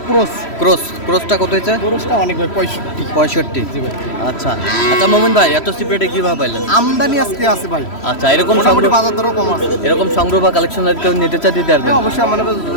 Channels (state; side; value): late; right; 3.1 ms